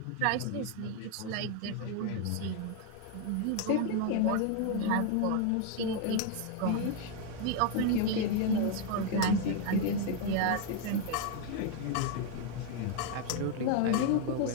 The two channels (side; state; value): both; different; correlation 0.01